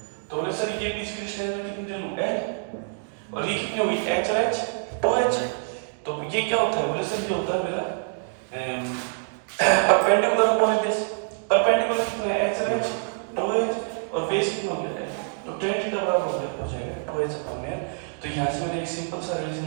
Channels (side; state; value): left; silent; 61 dB below the other